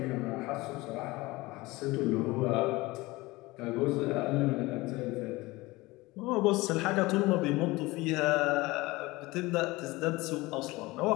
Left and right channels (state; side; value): quieter; right; 21.2 dB